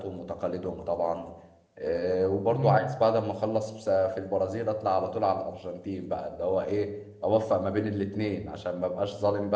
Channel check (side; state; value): both; identical; correlation 1.00